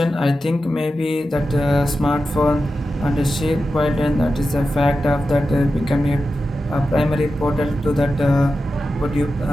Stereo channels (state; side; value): normal; both; correlation 0.91